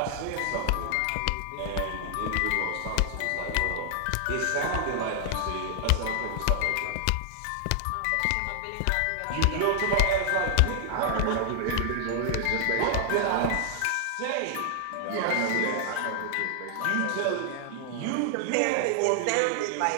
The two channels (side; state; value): both; different; correlation 0.00